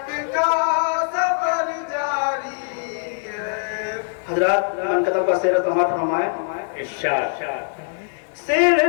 ادب کا سیر سماعت فرمائیں. ارشاد.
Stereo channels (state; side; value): silent; right; 64 dB below the other